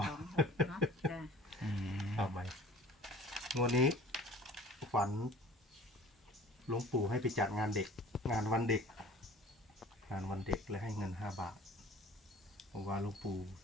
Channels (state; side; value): normal; both; correlation 0.47